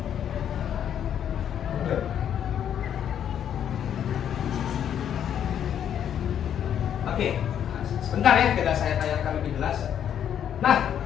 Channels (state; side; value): quieter; right; 9.4 dB